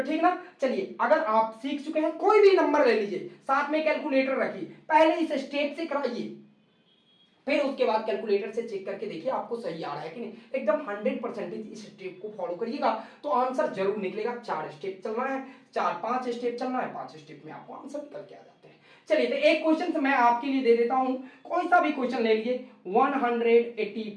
ठीक ना, चलिए अगर आप सीख चुके हैं कोई भी नंबर ले लीजिए, साथ में कैलकुलेटर रखिए, पहले इस स्टेप से कराइए, फिर उसके बाद कैलकुलेटर से चेक करके देखिए आपको सही आ रहा है कि नहीं। एकदम 100% इस स्टेप को फॉलो करिएगा तो आंसर जरूर निकलेगा। 4 स्टेप चलना है, 4-5 स्टेप चलना है, 5 स्टेप में आपको आंसर निकल के आ जाते हैं। चलिए तो एक क्वेश्चन मैं आपके लिए दे देता हूं, कोई सा भी क्वेश्चन ले लीजिए।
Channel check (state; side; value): identical; both; correlation 1.00